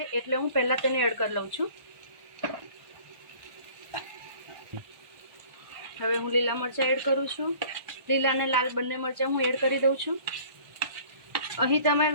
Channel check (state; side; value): late; left; 1.3 ms